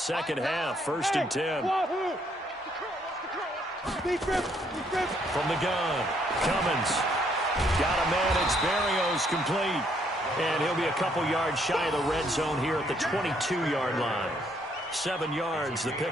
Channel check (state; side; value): normal; both; correlation 0.69